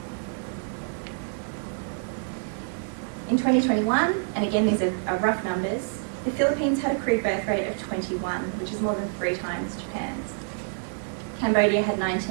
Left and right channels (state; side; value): silent; left; 60 dB below the other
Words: In 2021, and again these are rough numbers, the Philippines had a crude birth rate of 21, which is more than 3 times Japan's. Cambodia had